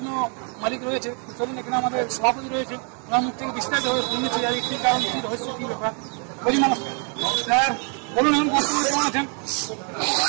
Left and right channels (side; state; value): left; quieter; 39.1 dB